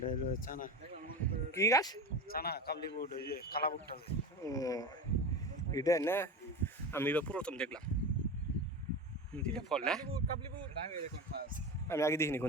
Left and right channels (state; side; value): normal; both; correlation 0.25